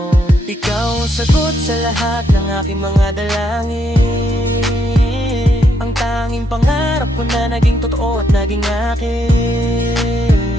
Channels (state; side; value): normal; both; correlation 0.75